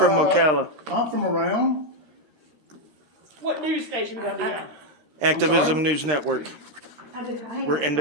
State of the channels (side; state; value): left; late; 13 ms